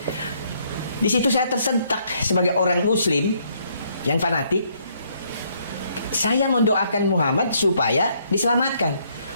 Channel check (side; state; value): both; inverted; correlation -0.69